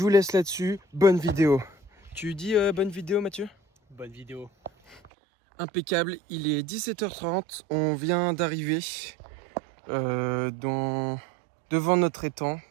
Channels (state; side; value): drops out; left; at 5.0 s